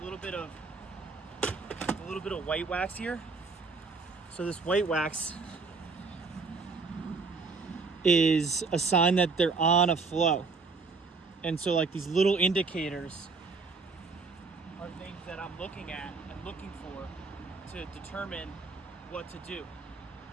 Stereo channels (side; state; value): left; quieter; 4.4 dB